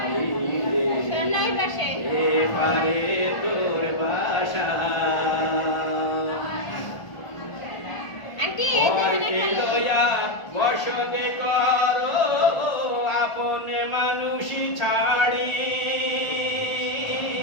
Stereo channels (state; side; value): late; right; 1.4 ms